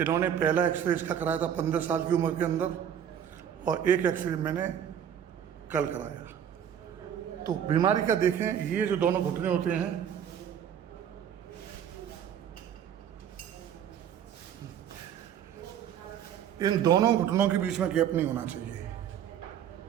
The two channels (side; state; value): left; quieter; 9.2 dB